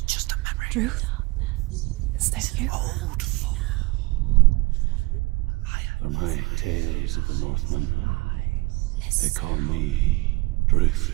a memory. Ruth? Is that you? Around you now. For my tales of the Northmen, they call me Druth.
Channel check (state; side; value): quieter; left; 23.4 dB